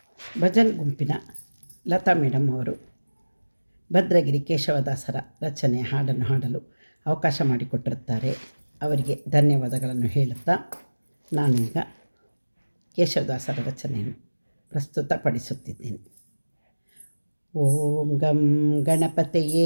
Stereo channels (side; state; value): both; inverted; correlation -1.00